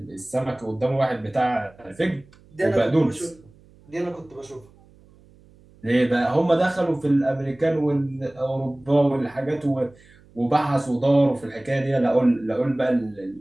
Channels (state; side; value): noise; right; hum, 27 dB below the sound